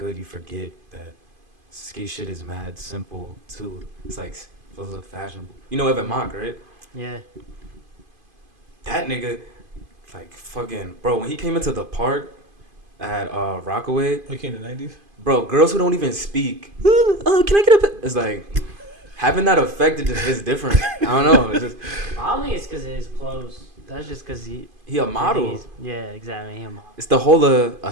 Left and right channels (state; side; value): late; left; 2.5 ms